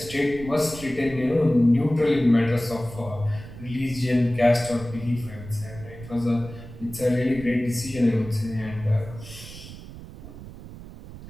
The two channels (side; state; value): right; noise; rumble, 14 dB below the sound